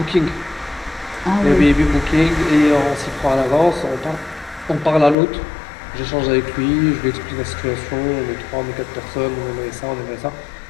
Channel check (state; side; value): drops out; right; at 5.2 s